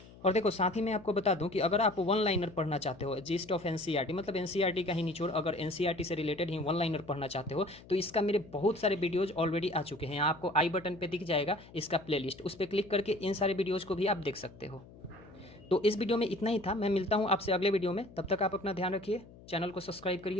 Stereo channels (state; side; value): noise; left; hum, 21 dB below the sound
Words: और देखो साथ ही मैं आपको बता दूं कि अगर आप वन लाइनर पढ़ना चाहते हो, जीस्ट ऑफ एनसीईआरटी, मतलब एनसीईआरटी का ही निचोड़, अगर एनसीईआरटी से रिलेटेड ही वन लाइनर पढ़ना चाहते हो तो इसका मेरे बहुत सारे वीडियोज ऑलरेडी आ चुके हैं। यहाँ आपको आई बटन पे दिख जाएगा इसका प्लेलिस्ट, उस पर क्लिक करके इन सारे वीडियोज़ को भी आप देख सकते हो। तो इस वीडियो में इतना ही था, मैं मिलता हूँ आपसे अगले वीडियो में, तब तक आप अपना ध्यान रखिए, चैनल को सब्सक्राइब